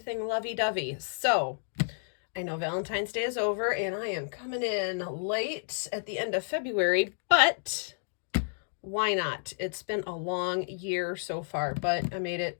lovey-dovey. So I know Valentine's Day is over and I am coming in late at the end of February, but why not? It's been a long year so far, but I made it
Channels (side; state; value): right; silent; digital silence